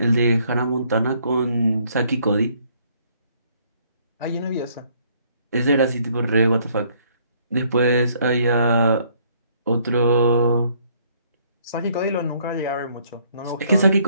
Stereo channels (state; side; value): inverted; both; correlation -0.65